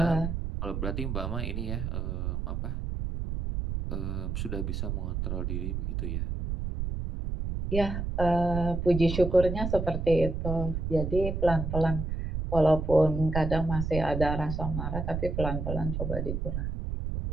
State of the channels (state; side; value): noise; right; rumble, 3 dB below the sound